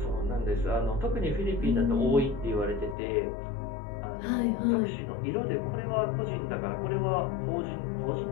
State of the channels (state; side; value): drops out; right; at 3.0 s